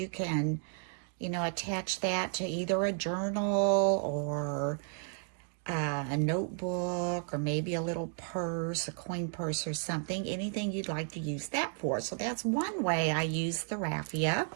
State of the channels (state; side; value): silent; left; 56 dB below the other